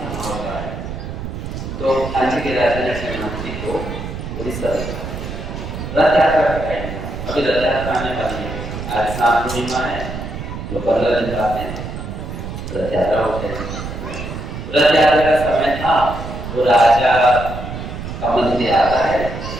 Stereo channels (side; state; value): right; noise; rumble, 7 dB below the sound